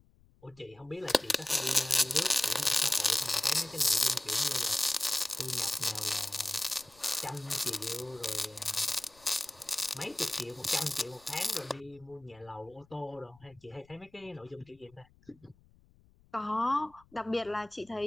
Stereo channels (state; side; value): noise; left; rumble, 29 dB below the sound